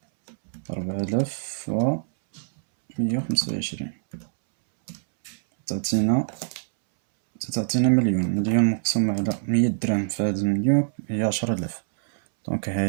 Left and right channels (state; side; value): silent; left; 62 dB below the other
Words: 4125 تعطينا مليون مقسوم على 100 درهم في هذا المليون هي 10000. دونك